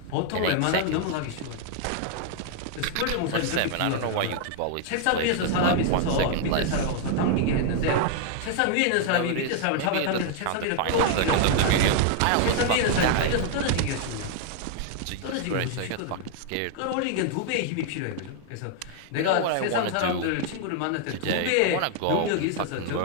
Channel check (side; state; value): both; different; correlation 0.00